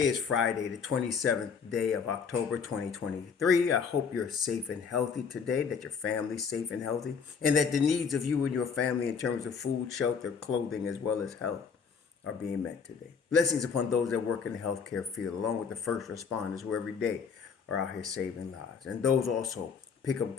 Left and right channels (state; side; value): quieter; right; 6.1 dB